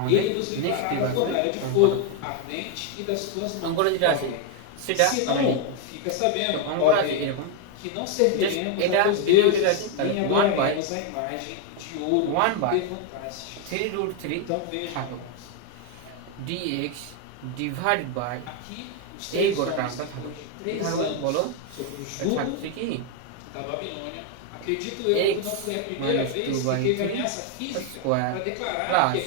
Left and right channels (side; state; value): both; different; correlation 0.01